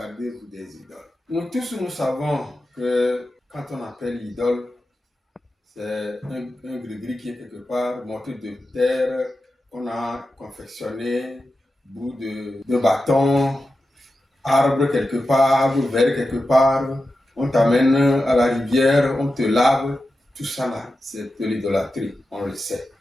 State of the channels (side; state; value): both; normal; correlation 0.91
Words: des idoles. Nous tous, nous savons que quand on appelle idole, c'est un gris-gris qui est quelque part, morceau de terre qu'on a confectionné, bout de bâton, arbre quelque part, verre quelque part, on t'amène à la rivière, on te lave, tout ça là, c'est de l'idolâtrie, on le sait.